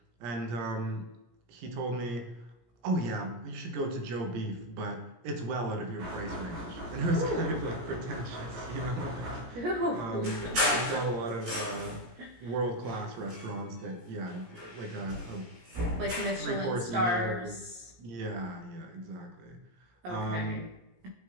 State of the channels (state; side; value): late; left; 17 ms